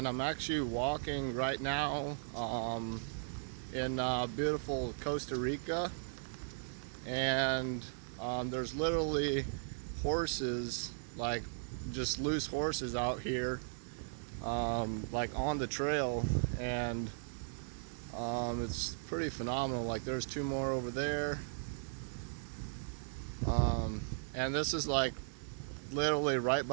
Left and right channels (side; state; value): left; silent; digital silence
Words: I'm actually walking right now in beautiful Costa Rica, and there's literally horses, like just loose horses out here, like on the trail, and it's pretty phenomenal. Like there's two more over there, and this is like literally right